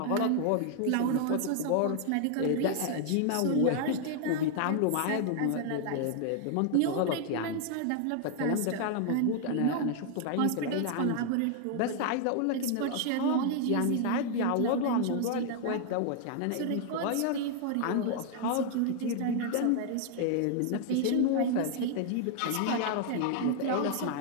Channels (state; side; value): different; both; correlation 0.00